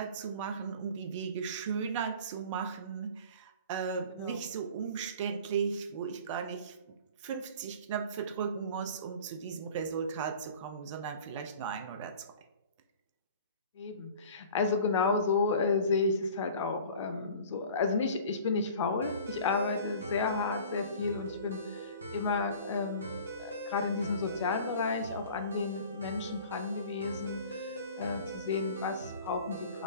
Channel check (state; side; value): inverted; both; correlation -0.44